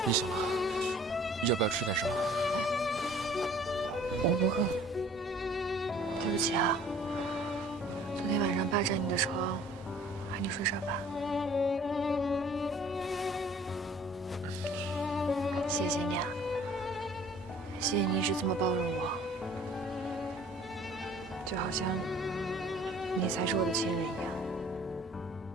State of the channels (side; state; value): both; normal; correlation 0.53